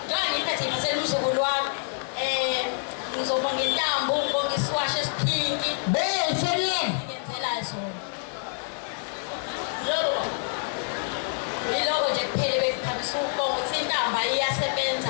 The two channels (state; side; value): silent; right; 60 dB below the other